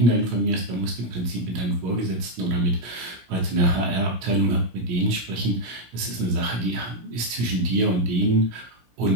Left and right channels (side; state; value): left; late; 17 ms